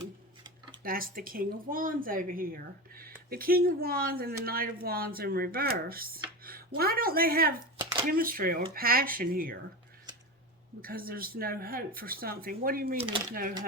That's the King of Wands over here. The King of Wands and the Knight of Wands in reverse. Why don't they have chemistry or passion here? Because there's no hope for something. What do you mean there's no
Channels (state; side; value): normal; both; correlation 0.24